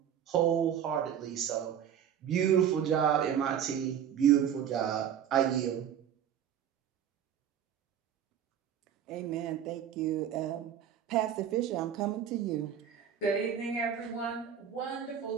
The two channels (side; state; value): left; quieter; 9.1 dB